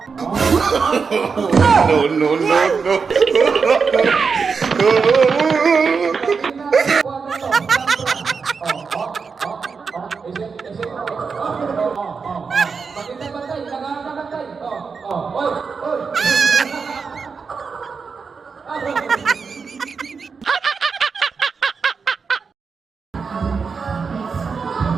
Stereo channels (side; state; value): left; quieter; 5.3 dB